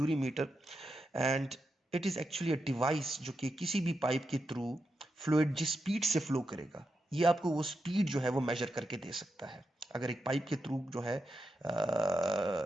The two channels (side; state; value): both; normal; correlation 0.87